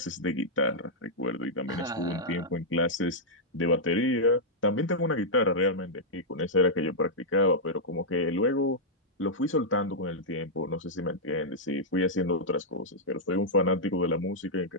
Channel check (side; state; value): both; normal; correlation -0.07